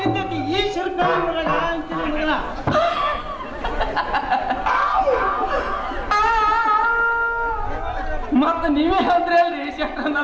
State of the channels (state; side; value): identical; both; correlation 1.00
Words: ಬಿದ್ದೈತಿ ಈ ಶಿರ್ಕ ಅಂತೀನಿ ಮಗಳ. ಮತ್ತ ನೀವೇ ಅಂದ್ರಿ ಅಲ್ರಿ ಶೆಟ್ರ